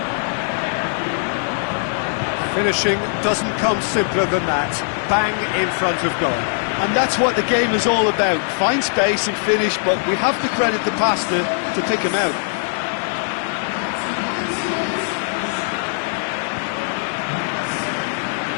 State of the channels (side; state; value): right; silent; digital silence